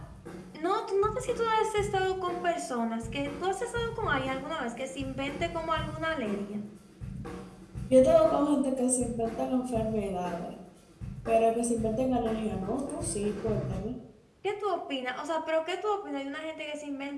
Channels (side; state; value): both; identical; correlation 1.00